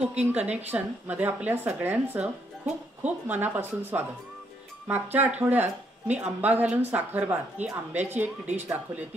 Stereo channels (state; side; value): normal; both; correlation 0.73